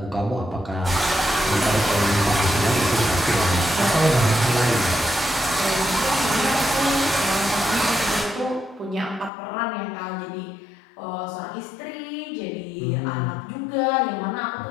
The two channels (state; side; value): drops out; right; at 9.3 s